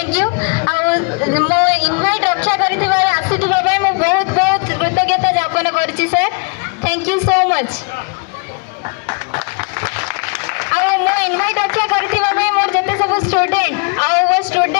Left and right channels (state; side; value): quieter; right; 34.6 dB